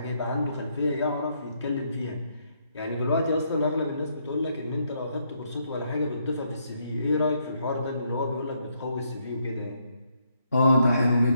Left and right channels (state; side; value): inverted; both; correlation -0.75